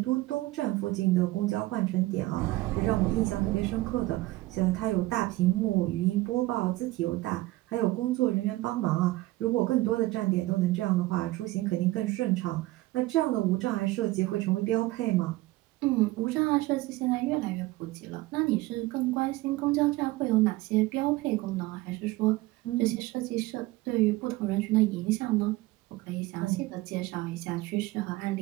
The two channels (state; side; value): quieter; left; 18.8 dB